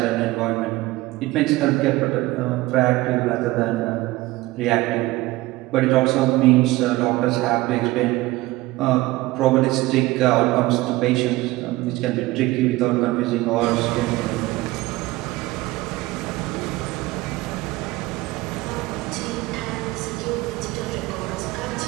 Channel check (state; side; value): quieter; left; 19.3 dB